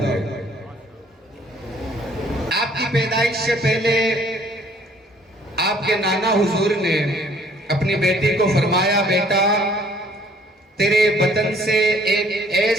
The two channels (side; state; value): both; normal; correlation 0.59